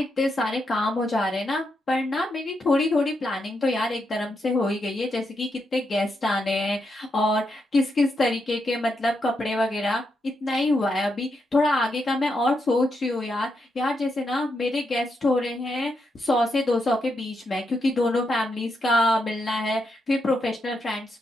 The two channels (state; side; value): normal; both; correlation 0.82